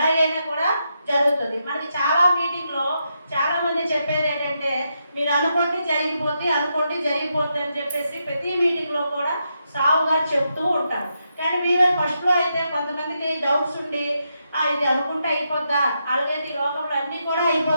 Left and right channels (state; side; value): inverted; both; correlation -0.83